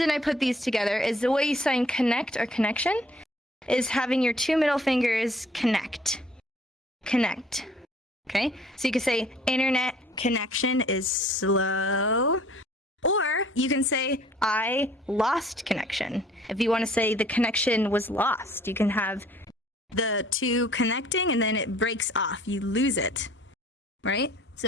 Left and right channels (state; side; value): normal; both; correlation 0.55